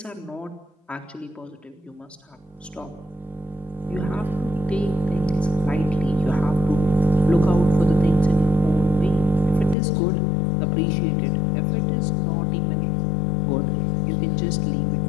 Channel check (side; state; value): right; drops out; at 9.8 s